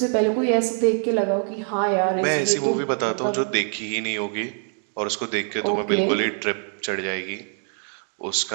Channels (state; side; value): silent; left; 56 dB below the other